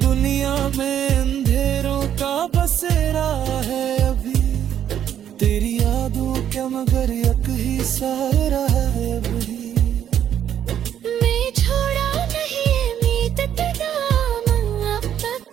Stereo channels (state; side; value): quieter; left; 9.9 dB